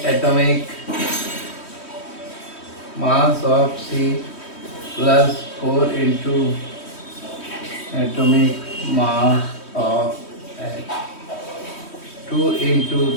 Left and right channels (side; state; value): right; late; 3.1 ms